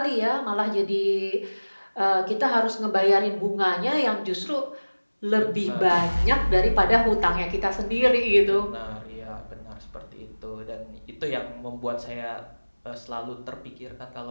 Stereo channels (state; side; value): inverted; both; correlation -1.00